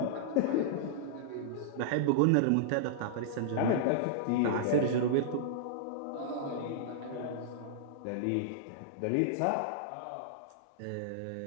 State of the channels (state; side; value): different; both; correlation -0.02